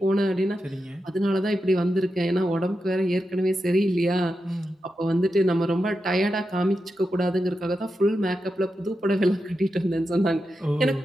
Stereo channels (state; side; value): normal; both; correlation 0.89